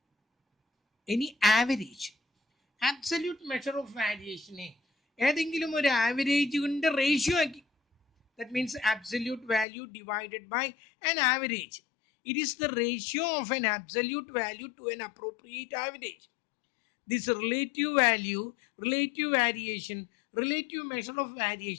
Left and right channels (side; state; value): right; drops out; at 9.7 s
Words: any average. Absolute measure of variation ഏതെങ്കിലും ഒരു ആവറേജ് കൊണ്ട് റേഷ്യോ ആക്കി. That means absolute value divided by an average. It is the ratio of an absolute value to an appropriate average. This relative value, relative variation, relative measure of